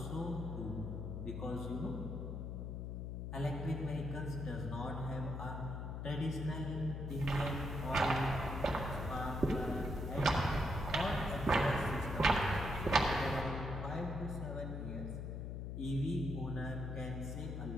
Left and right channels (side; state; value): left; noise; hum, 4 dB below the sound